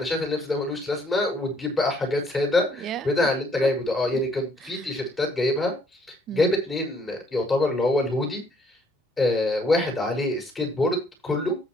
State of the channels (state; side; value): normal; both; correlation 0.65